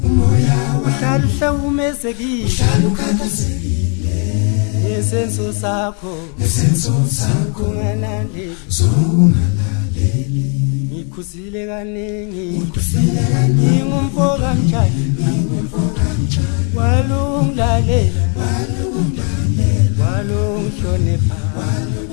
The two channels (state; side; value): quieter; right; 38.4 dB